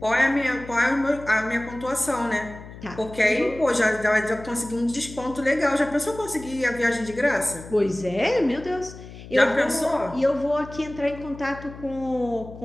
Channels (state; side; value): noise; left; hum, 15 dB below the sound